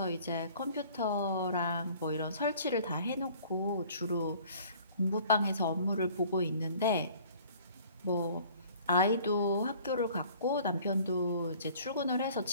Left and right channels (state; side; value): inverted; both; correlation -0.51